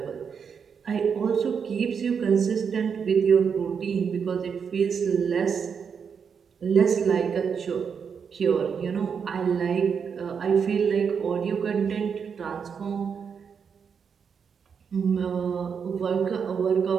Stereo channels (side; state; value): left; quieter; 6.6 dB